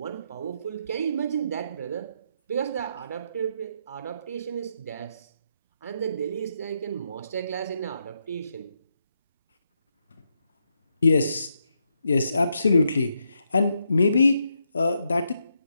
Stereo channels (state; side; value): inverted; both; correlation -0.80